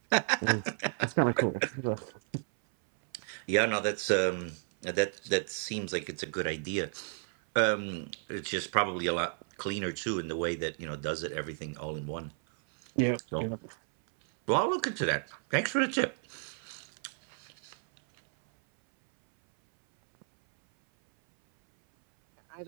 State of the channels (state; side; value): silent; left; 56 dB below the other